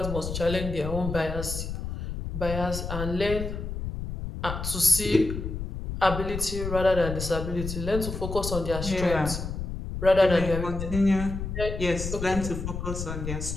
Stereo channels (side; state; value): left; noise; rumble, 5 dB below the sound